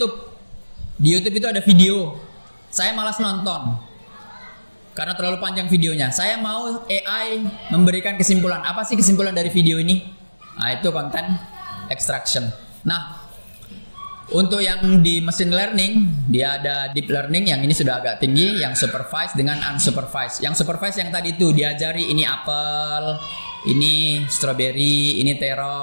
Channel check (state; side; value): inverted; both; correlation -1.00